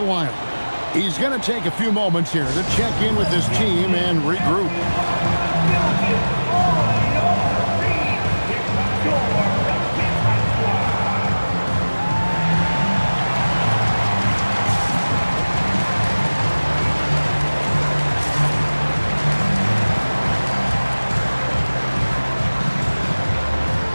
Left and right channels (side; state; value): both; inverted; correlation -1.00